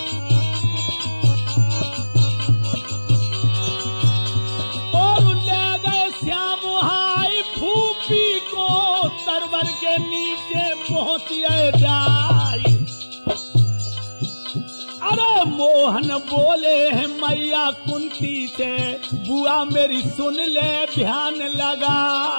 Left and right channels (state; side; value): inverted; both; correlation -1.00